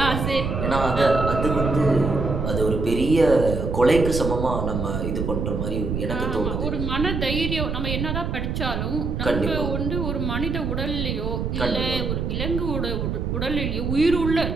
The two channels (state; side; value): noise; right; rumble, 2 dB below the sound